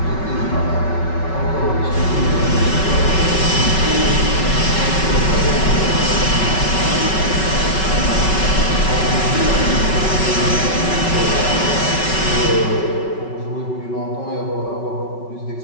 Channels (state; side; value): late; right; 5.3 ms